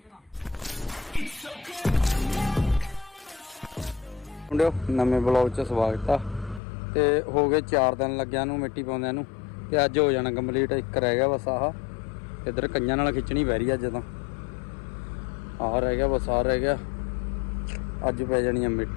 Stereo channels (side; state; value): right; drops out; at 6.6 s